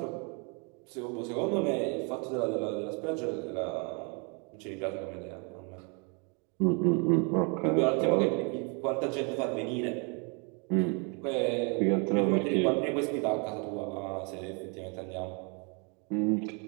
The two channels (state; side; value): quieter; left; 35.0 dB